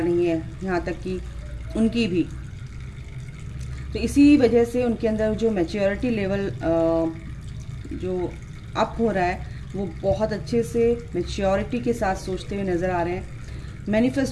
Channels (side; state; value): both; identical; correlation 1.00